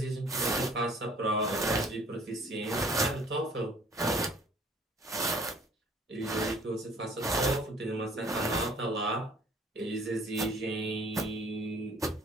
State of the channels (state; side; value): normal; both; correlation 0.54